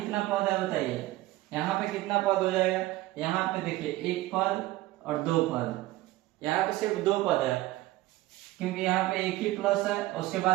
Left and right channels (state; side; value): quieter; left; 17.3 dB